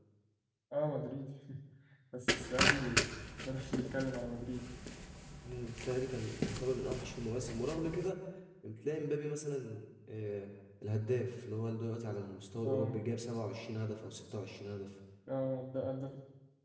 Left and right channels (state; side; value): identical; both; correlation 1.00